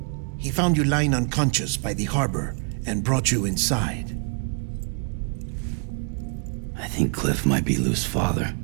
He found you lying unconscious by the harbor and brought you inside. I think Cliff might be Lou's father.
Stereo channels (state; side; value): quieter; left; 39.9 dB